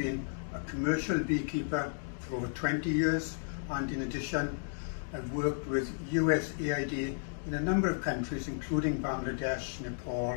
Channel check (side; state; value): right; silent; digital silence